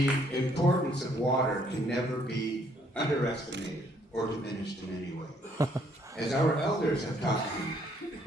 importance of water can never be underestimated or diminished in any way. As our elders have taught me,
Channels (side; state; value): both; normal; correlation 0.67